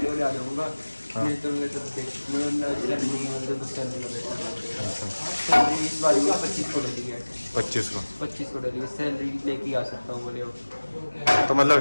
आ जाऊंगा। नहीं तो मैं सैलरी इस बार 25 को डली है। 25 को डली है सैलरी, लेके आ सकता हूँ बोले। तो मतलब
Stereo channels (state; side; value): inverted; both; correlation -1.00